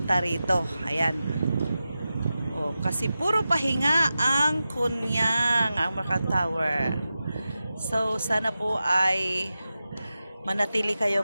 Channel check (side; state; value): both; inverted; correlation -0.93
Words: rito. Ayan. Oh, kasi puro pahinga ang Kunyang, ang Macau Tower. So, sana po ay manatili